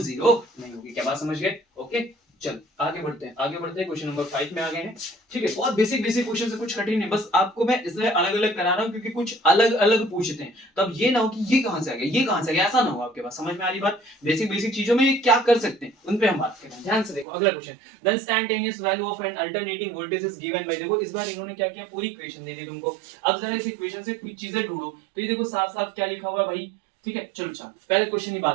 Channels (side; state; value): left; drops out; at 17.2 s